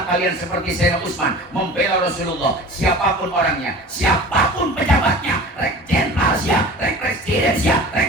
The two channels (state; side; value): normal; both; correlation 0.40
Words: kalian seperti Sayyidina Utsman, membela Rasulullah. Siapapun orangnya, siapapun pejabatnya, rek jenderal siap, rek presiden siap, rek